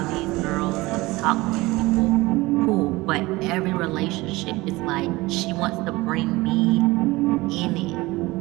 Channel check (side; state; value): left; quieter; 20.9 dB